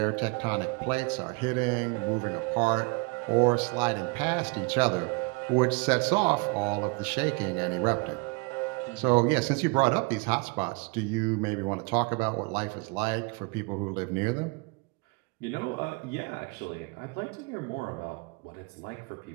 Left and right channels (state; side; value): quieter; left; 29.5 dB